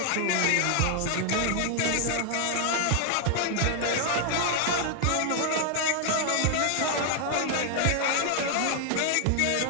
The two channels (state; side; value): different; both; correlation 0.00